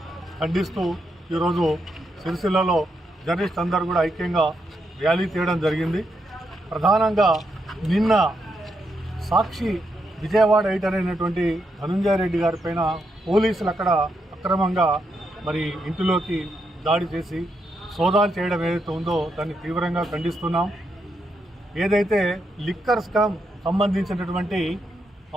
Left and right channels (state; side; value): normal; both; correlation 0.81